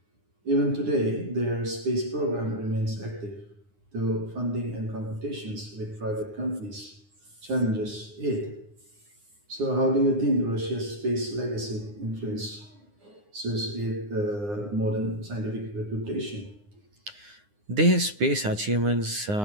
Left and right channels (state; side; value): late; left; 9.7 ms